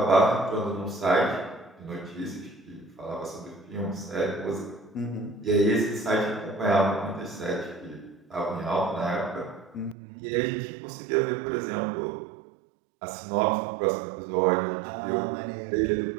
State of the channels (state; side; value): drops out; left; at 10.0 s